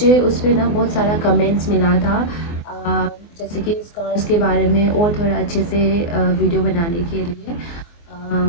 उस पे ना बहुत सारा comments मिला था जैसे कि स्कार्स के बारे में और थोड़ा अच्छे से वीडियो बनाने के लिए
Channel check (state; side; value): late; right; 24 ms